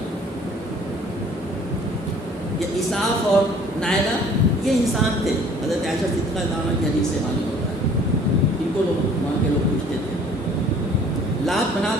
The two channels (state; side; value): normal; both; correlation 0.53